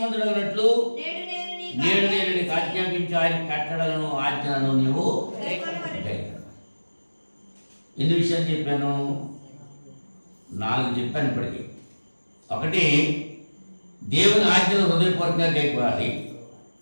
నేడు నేను నీకు ఆజ్ఞాపించు ఆయన కట్టడలను ఆజ్ఞలను నీవు ఎన్ని విషయాలు చెప్పాను? 4 చెప్పాను ఇప్పటికీ. ఒకటి, దేవుని ఆజ్ఞలు హృదయపూర్వకంగా గైకోవాలి.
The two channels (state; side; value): inverted; both; correlation -1.00